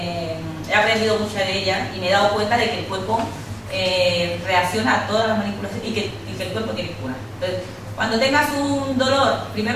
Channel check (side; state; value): both; identical; correlation 1.00